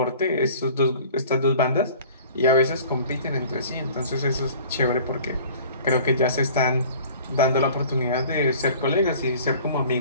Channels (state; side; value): inverted; both; correlation -0.47